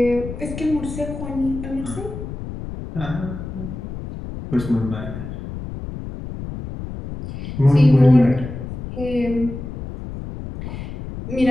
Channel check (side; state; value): left; noise; rumble, 9 dB below the sound